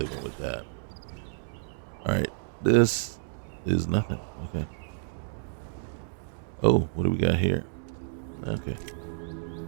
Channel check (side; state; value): left; silent; digital silence